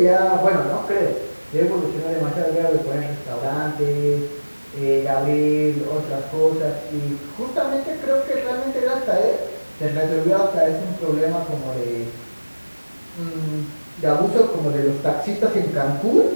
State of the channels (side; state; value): both; inverted; correlation -1.00